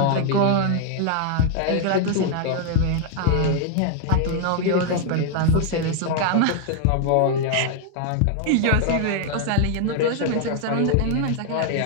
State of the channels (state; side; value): different; both; correlation 0.00